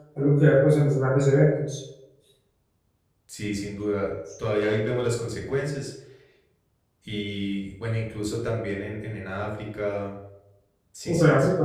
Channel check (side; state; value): both; identical; correlation 1.00